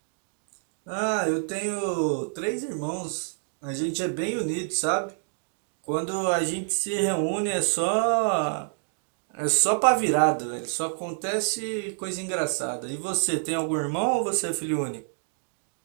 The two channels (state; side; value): silent; left; digital silence